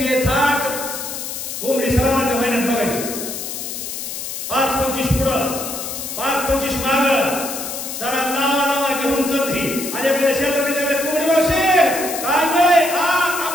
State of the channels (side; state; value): left; noise; hiss, 6 dB below the sound